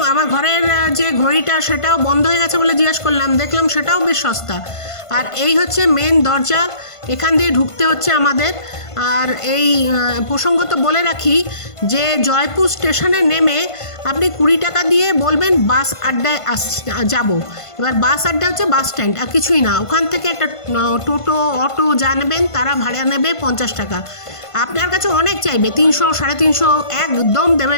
আমার ঘরের যে ঘড়িটা সেটাও বন্ধ হয়ে গেছে বলে জিজ্ঞাসা করলাম, দেখলাম সেটাও বেশ সস্তা। আর এই হচ্ছে মেন দরজা, এখান দিয়ে ঢুকতে হচ্ছে আমাদের। আর এই প্রসঙ্গত বলে রাখি যে জয়পুর স্টেশনে নেমে আপনি 20 টাকা দিয়ে বলবেন বাস আড্ডায় যাব। এবার বাস আড্ডা হচ্ছে বাস স্ট্যান্ড, আর কিছুই না। ওখান থেকে একটা টোটো অটো যা নেবেন তারা ভাড়া নেবে 50 টাকা। আপনার কাছে অনেক চাইবে, 300 350, একদম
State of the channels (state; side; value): late; right; 1.5 ms